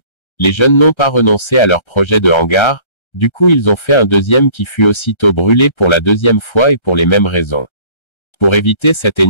les jeunes n'ont pas renoncé à leur projet de hangar, du coup ils ont fait un deuxième qui fut aussitôt brûlé pour la deuxième fois et pour les mêmes raisons. Pour éviter cet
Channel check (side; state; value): right; late; 1.3 ms